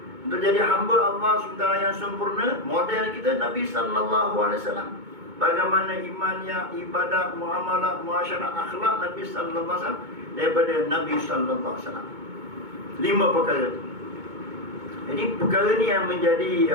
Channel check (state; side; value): late; left; 2.2 ms